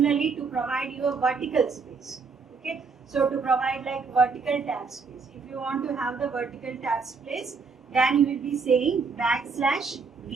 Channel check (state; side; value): quieter; left; 4.9 dB